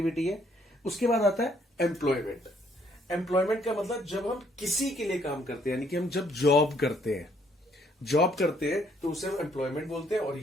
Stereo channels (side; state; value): both; normal; correlation 0.67